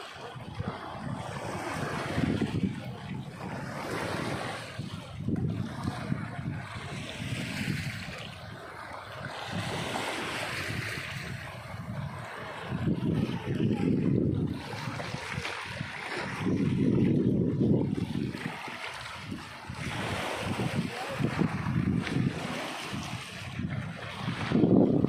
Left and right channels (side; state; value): both; identical; correlation 1.00